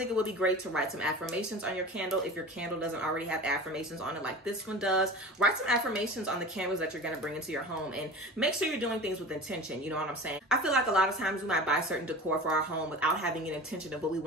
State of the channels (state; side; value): normal; both; correlation 0.35